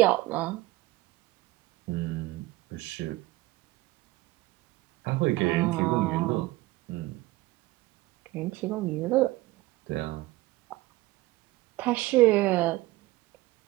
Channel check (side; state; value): left; quieter; 19.1 dB